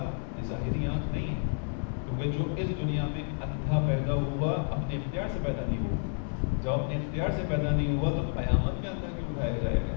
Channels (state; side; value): silent; right; 58 dB below the other